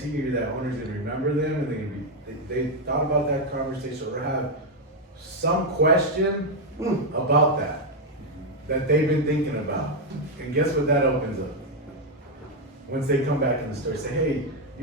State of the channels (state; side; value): normal; both; correlation 0.03